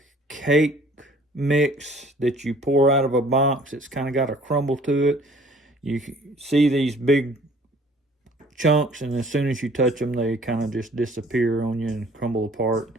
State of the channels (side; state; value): both; normal; correlation 0.54